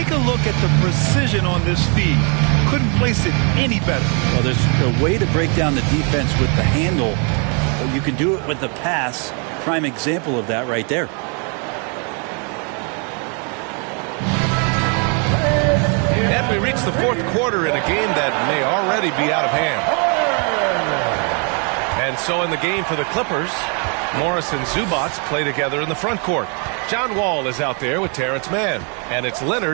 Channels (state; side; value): quieter; left; 37.2 dB